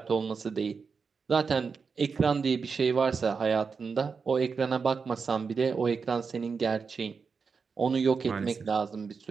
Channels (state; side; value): quieter; left; 5.3 dB